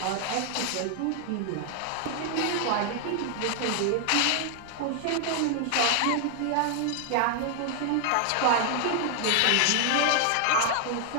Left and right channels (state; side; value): different; both; correlation 0.00